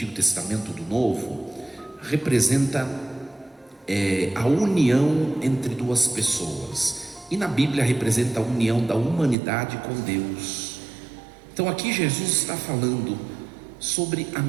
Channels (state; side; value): drops out; left; at 9.3 s